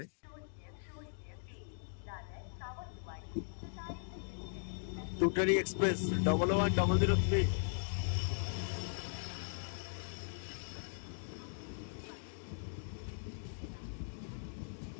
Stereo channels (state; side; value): silent; right; digital silence